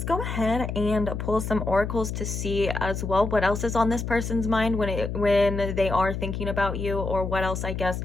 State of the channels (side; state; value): left; noise; hum, 4 dB below the sound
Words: go ahead and pull some oracles to see as well what else is on this person's mind when they are thinking about you, or what else. I guess